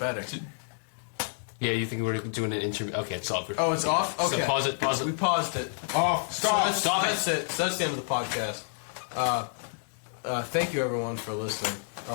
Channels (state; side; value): silent; right; digital silence